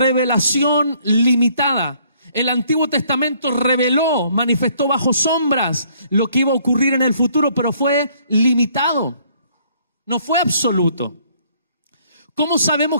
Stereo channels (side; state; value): both; inverted; correlation -0.63